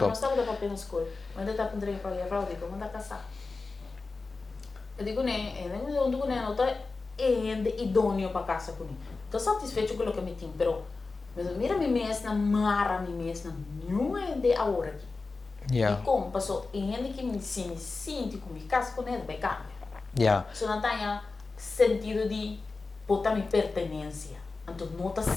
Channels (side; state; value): right; quieter; 3.9 dB